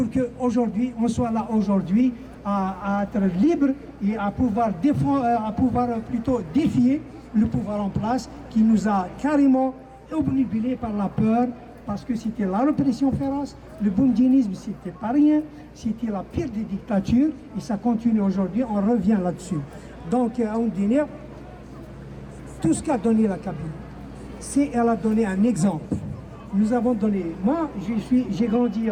qu'aujourd'hui, on soit là aujourd'hui à être libre et à pouvoir plutôt défier le pouvoir en place qui nous a carrément obnubilés par la peur, parce que c'était la répression féroce, le boumdinisme, c'était pas rien, c'était la pire des dictatures, et ça continue aujourd'hui, on revient là-dessus. Donc, à Oundiner, tout ce qu'a donné la Kabylie, elle a donné un exemple. Nous avons donné, moi, j'ai grandi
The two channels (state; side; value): identical; both; correlation 1.00